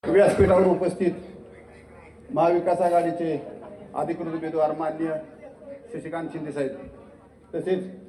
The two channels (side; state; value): both; identical; correlation 1.00